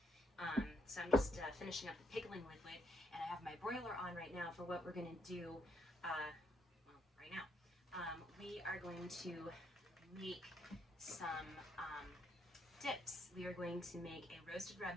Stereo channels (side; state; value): both; normal; correlation 0.74